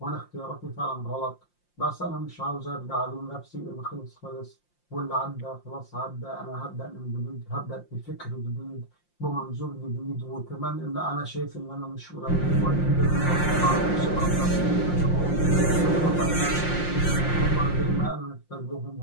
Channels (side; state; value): right; late; 5.7 ms